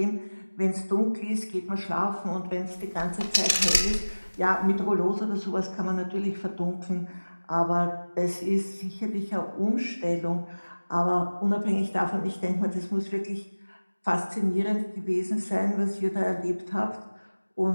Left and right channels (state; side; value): inverted; both; correlation -1.00